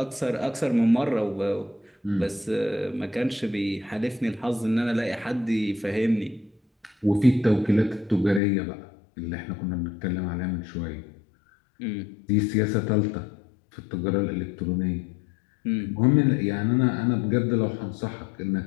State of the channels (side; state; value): right; drops out; at 8.4 s